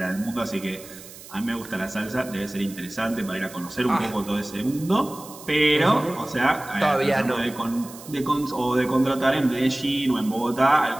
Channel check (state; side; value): noise; right; hiss, 17 dB below the sound